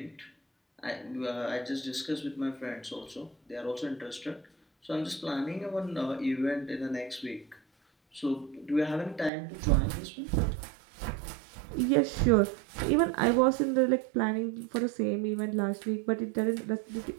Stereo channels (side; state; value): left; drops out; at 9.3 s